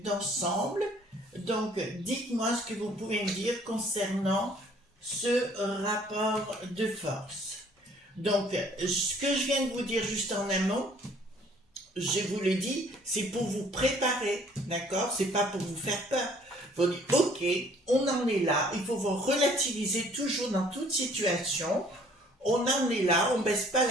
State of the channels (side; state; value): both; normal; correlation 0.58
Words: d'ensemble. Donc, dites-moi ce que vous pouvez me dire concernant ce rapport de force. Donc, ce que je viens de vous dire juste en un mot, je vous le dis, c'est pour vous préparer, d'accord? C'est pas pour vous faire peur. Il faut dire, ok, on en est là, il faut vous relativiser toujours dans toute situation, on en est là, on baisse pas